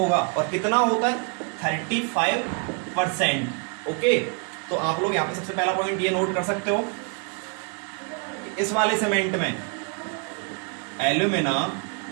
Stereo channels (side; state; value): left; quieter; 37.1 dB